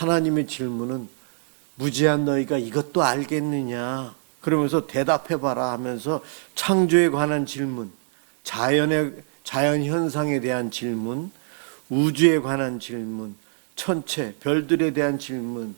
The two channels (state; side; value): silent; left; digital silence